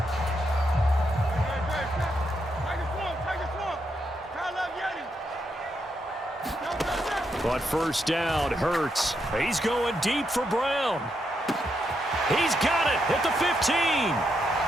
But first down, Hurts. He's going deep for Brown. He's got it at the 15.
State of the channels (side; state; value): both; normal; correlation 0.81